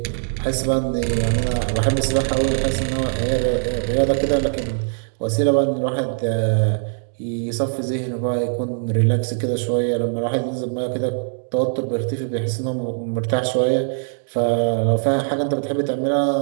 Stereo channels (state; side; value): silent; left; digital silence